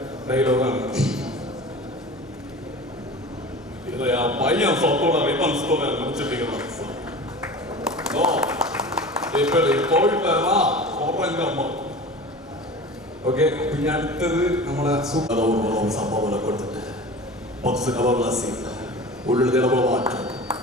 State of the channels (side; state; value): both; normal; correlation 0.36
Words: ഡയലോഗാണ്. പയ്യൻ സ്വത്തോടെ റിബൺസ്തോടെ മുറിച്ചിട്ടിരിക്കണം. ഓക്കെ, പിന്നെ അടുത്തത് നമ്മളെ സംഭവങ്ങളെ കൊടുത്തിട്ട് ബോക്സ് കവർലാസി ഉള്ളിൽ ഇടപെട മാറ്റം